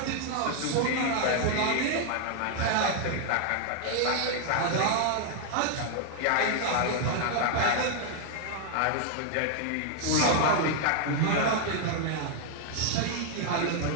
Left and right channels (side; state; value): both; different; correlation 0.00